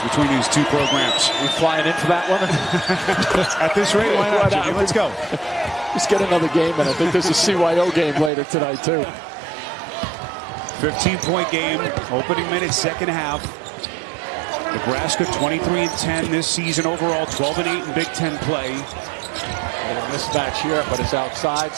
between these two programs. We flying in for that one? At this rate, why not, Jimmy? Let's go. Let's get another game, and I think there's a CYO game later tonight, too. 15-point game, opening minute, second half. Nebraska 23-10 this season overall, 12-8 in Big Ten play. A little mismatch here, but it's outside,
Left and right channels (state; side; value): drops out; left; at 8.3 s